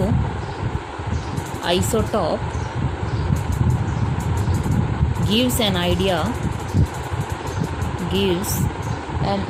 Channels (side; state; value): both; identical; correlation 1.00